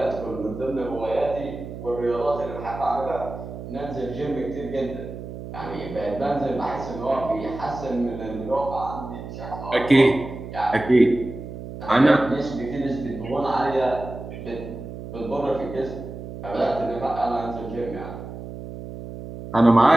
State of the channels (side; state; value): right; noise; hum, 10 dB below the sound